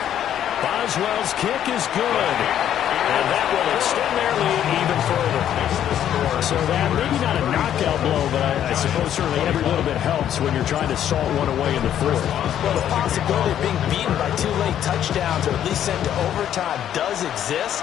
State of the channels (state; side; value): quieter; right; 10.5 dB